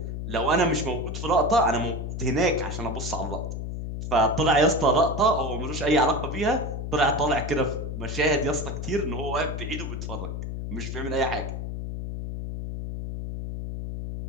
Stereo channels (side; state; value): left; noise; hum, 5 dB below the sound